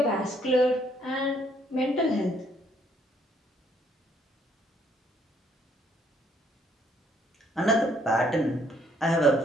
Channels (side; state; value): both; normal; correlation 0.66